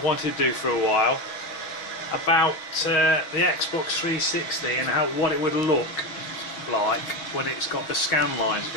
to do for a while about the Xbox 360 and what it would look like when it's got the scan lines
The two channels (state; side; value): late; right; 6.2 ms